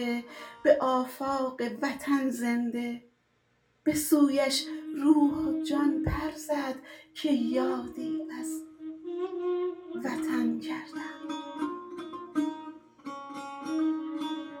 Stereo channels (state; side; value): identical; both; correlation 1.00